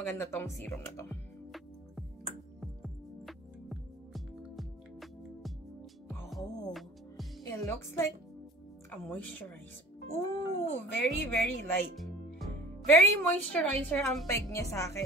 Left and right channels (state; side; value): normal; both; correlation 0.46